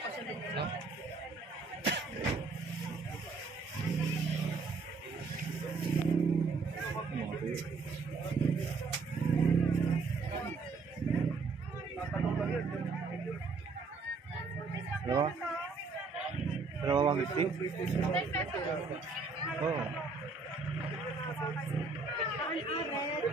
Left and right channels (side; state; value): left; quieter; 4.3 dB